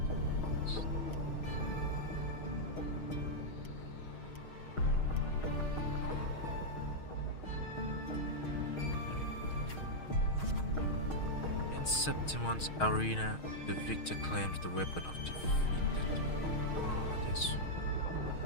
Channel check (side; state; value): right; late; 6.4 ms